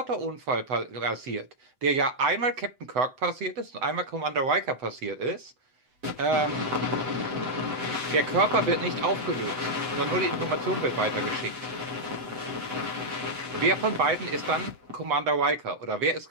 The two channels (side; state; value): left; late; 7.9 ms